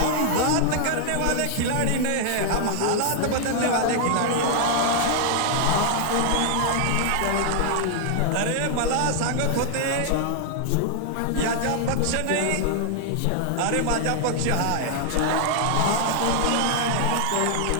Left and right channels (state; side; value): different; both; correlation 0.00